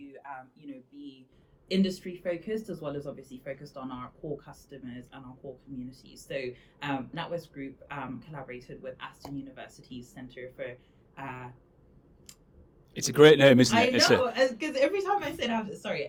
be industry focused, as well as obviously focused on our core customers and our core communities. So NatWest Group collaborated with Aston University's Centre for it's a great name, isn't it? I know, because every time I say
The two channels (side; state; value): both; identical; correlation 1.00